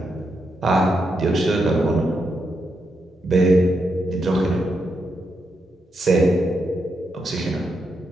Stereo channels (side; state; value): both; normal; correlation 0.82